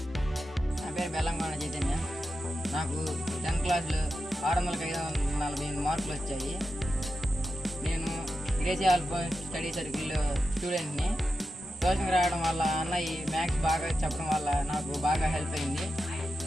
నా పేరు బెల్లంకొండ చైతన్య. నాకు 10th క్లాస్లో 600-548 మార్కులు వచ్చాయి. నేను గ్రేసీ అల్ఫాన్స్ స్టడీ సర్కిల్ స్టూడెంట్ని. ట్యూషన్కి రావడం వల్ల అన్నయ్య మ్యాథ్స్ బాగా చెప్పడం వల్ల నాకు బాగా హెల్ప్ అయింది.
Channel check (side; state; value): both; normal; correlation 0.90